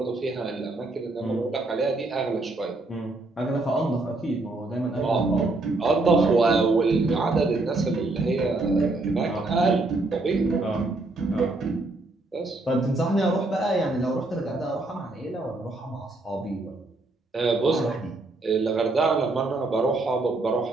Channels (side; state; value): left; quieter; 3.1 dB